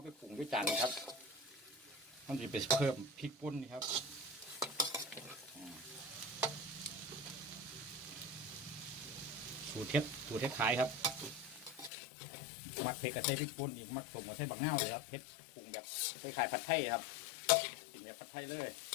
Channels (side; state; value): right; drops out; at 11.9 s